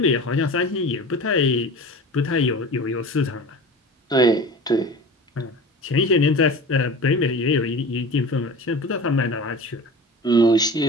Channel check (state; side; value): normal; both; correlation 0.36